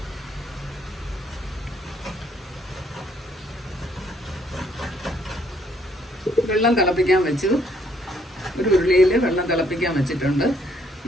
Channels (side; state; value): both; normal; correlation 0.67